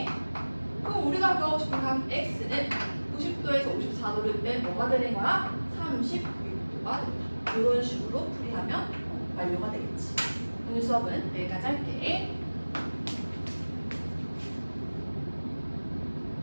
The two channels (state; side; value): inverted; both; correlation -1.00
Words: 그럼 우리가 구하고 싶은 각 X는 90도에서 54도를 빼 뭐가 되는 거야? 36도가 된다. 이런 식으로 풀이하면 완료가 되겠지. 오늘 수업은 여기까지 할게.